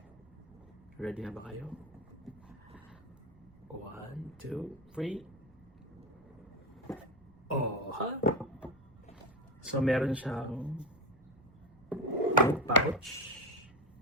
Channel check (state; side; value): noise; right; rumble, 24 dB below the sound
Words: Ready na ba kayo? 1, 2, 3. Oh, ha? So, meron siyang pouch